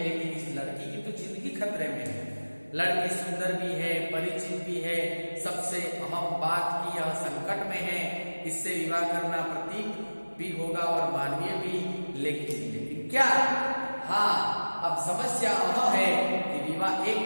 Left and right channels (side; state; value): both; inverted; correlation -1.00